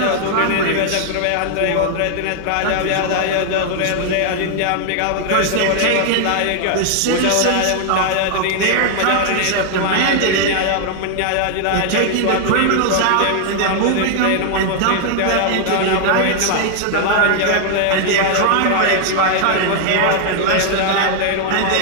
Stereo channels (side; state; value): both; different; correlation 0.00